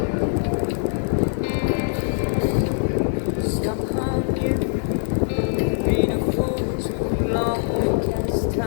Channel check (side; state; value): right; silent; digital silence